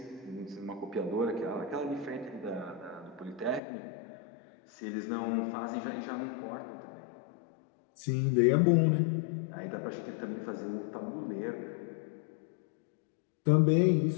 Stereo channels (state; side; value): drops out; right; at 3.6 s